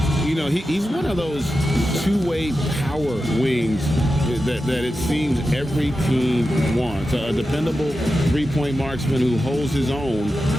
You know, he's one of those two-way power wings that it seems every team wants. A dependable three-point marksman who holds his own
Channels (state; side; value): normal; both; correlation 0.91